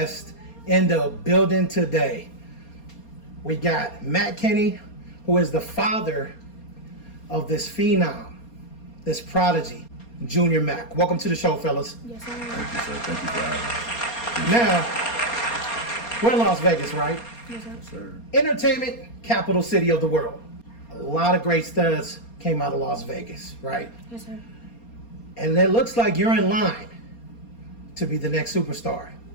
in the building today. We got Matt Kenny, who is the father of this phenom, this prodigy, Jr Mack. Welcome to the show, fellas. Yes, sir. Thank you, sir. Thank you for having Now, we're in Las Vegas, right? Yes, sir. me. Sir. Entertainment capital city of the world. A lot of great studs came out of Las Vegas, right? Yes, sir. And it looks like you're in line to be the next superstar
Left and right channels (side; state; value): right; late; 4.3 ms